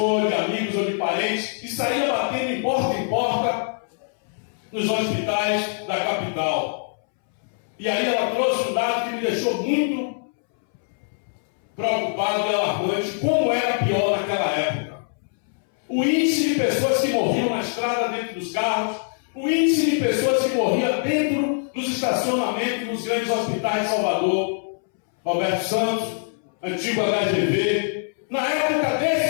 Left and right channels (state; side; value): silent; right; 63 dB below the other